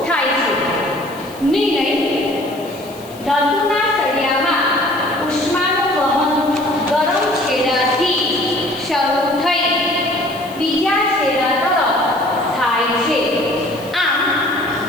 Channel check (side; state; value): left; noise; hiss, 21 dB below the sound